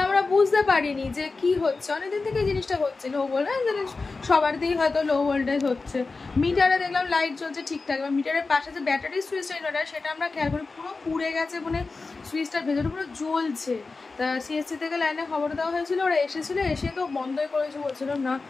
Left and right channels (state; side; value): quieter; right; 3.9 dB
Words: আমরা বুঝতে পারিনি যে কি হচ্ছে। অনেকদিন থেকে এই জিনিসটা হচ্ছে, লো ভোল্টেজ সবার দিয়েই হয়তো লো ভোল্টেজ হচ্ছে। মিটারে দেখলাম লাইট জ্বলছে ঠিকঠাক, এবার মিটারের পাশে যে ব্যাটারি সুইচটা ইনভার্টার, সেটা আমরা খেয়াল করি পুরো পুড়ে গেছে, মানে সুইচটার ভেতরে পুরো জ্বলছে। তা সিএসসি থেকে লাইনে খবর দেওয়া হয়েছিল, ওরা এসেছিলো, এসে তো বন্ধই করেছে, বলছিলাম না